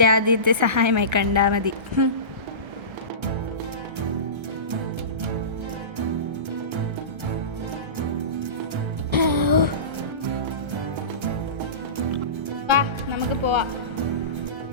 ആദ്യത്തെ സഹായമായി കണ്ടാൽ മതി. വാ നമുക്ക് പോവാം.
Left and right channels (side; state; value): left; late; 1.3 ms